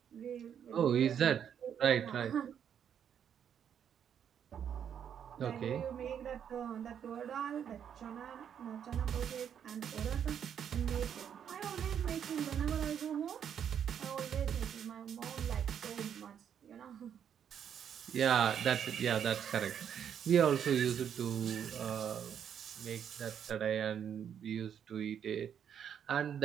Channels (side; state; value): left; quieter; 8.6 dB